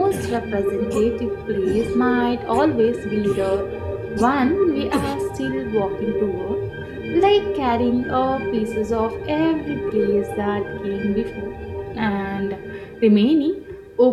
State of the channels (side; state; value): both; identical; correlation 1.00